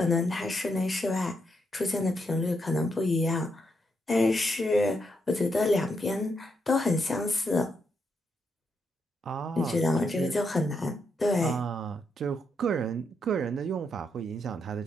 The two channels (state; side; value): normal; both; correlation 0.80